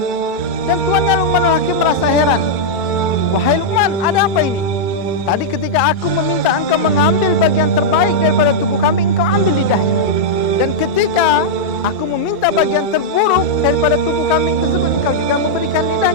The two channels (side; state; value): right; late; 2.3 ms